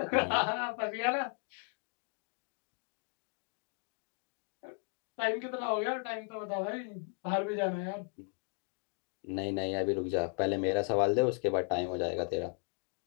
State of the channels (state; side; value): quieter; right; 40.0 dB